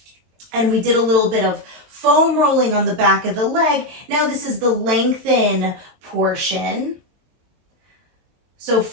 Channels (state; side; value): late; left; 23 ms